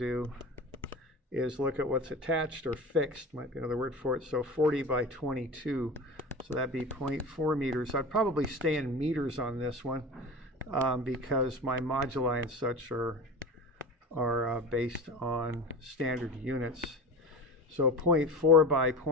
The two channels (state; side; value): normal; both; correlation 0.31